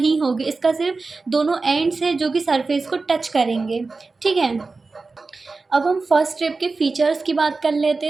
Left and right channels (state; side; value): quieter; left; 3.9 dB